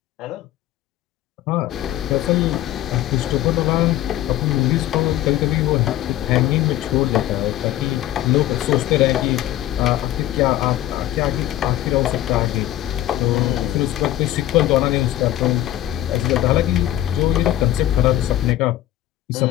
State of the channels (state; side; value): quieter; right; 13.8 dB